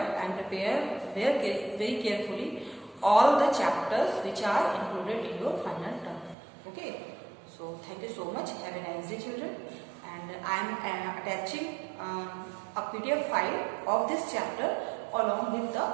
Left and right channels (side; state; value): left; drops out; at 6.4 s